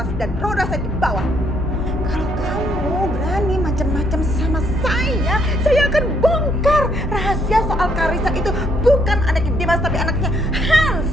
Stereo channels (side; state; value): both; normal; correlation 0.70